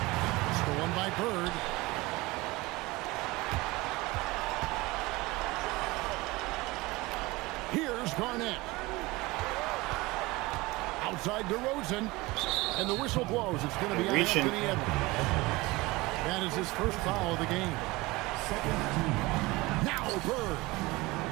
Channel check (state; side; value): quieter; left; 21.7 dB